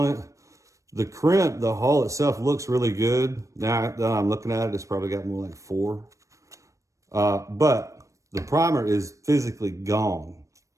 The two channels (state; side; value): late; left; 0.15 ms